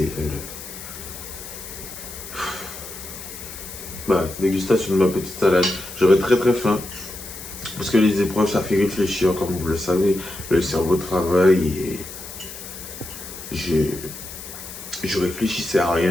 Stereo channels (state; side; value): noise; left; hiss, 12 dB below the sound